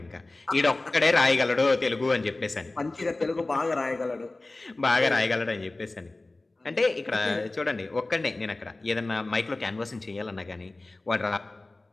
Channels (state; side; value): quieter; right; 3.0 dB